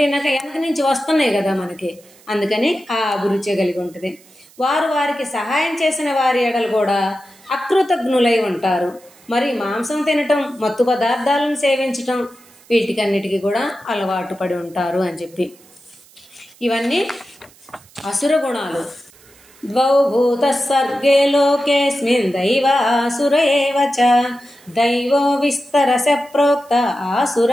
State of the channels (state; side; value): noise; right; hiss, 27 dB below the sound